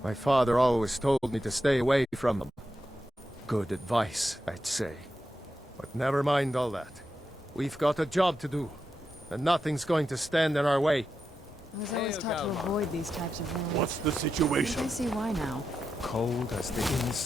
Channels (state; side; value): normal; both; correlation 0.88